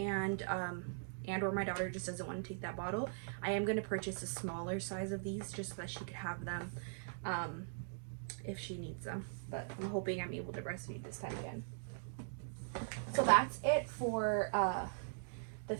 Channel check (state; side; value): silent; left; digital silence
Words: or my daughter just doesn't want to take that bottle, I am going to purchase a smaller size of these just so that she could have them if she needs them. But I'm hoping I'm able to breastfeed this time again. So that's it for the